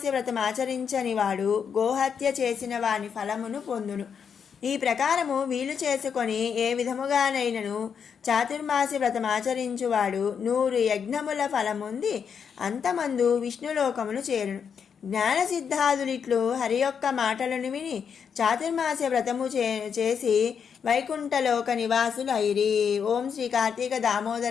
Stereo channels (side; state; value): right; quieter; 7.0 dB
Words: వ్రతం ఆచరించని వాడు గోహత్య చేసిన వాని ఫలమును పొందును. ఈ ప్రకారము వీలు చేసుకొని ఏ విధముగానైనను చాతుర్మాస్య వ్రతం ఆచరించువాడు 100 యజ్ఞముల ఫలముంది అంతమందు విష్ణులోకమును చేరును. జ్ఞానసిద్ధాదులిట్లు హరి యొక్క మాటలను విని చాతుర్మాస్య వ్రతము చేసి వైకుంఠలోక నివాసులు అయిరి. ఓం శ్రీ కార్తీక